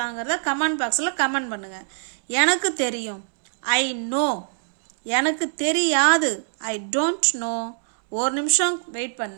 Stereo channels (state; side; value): silent; left; 63 dB below the other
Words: கமெண்ட் பாக்ஸில் கமெண்ட் பண்ணுங்கள். எனக்கு தெரியும். I know. எனக்கு தெரியாது. I don't know. ஒரு நிமிஷம் வெயிட்